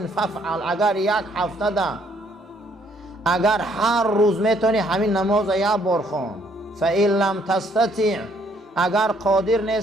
فافعل. اگر یک هفته ده، اگر هر روز میتونی همین نماز یک بار خوان. فإن لم تستطع، اگر قادر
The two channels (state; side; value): normal; both; correlation 0.67